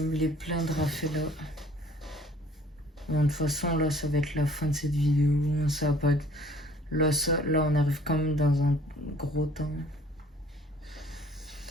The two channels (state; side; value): normal; both; correlation 0.55